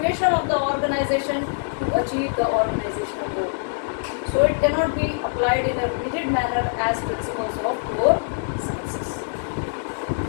of the organization to achieve the organizational goal. So it cannot be applied in a rigid manner as principles of core sciences.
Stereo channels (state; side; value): silent; right; digital silence